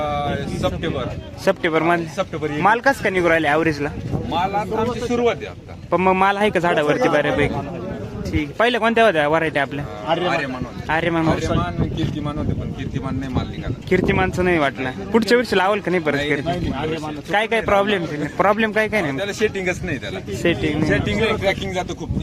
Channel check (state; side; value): identical; both; correlation 1.00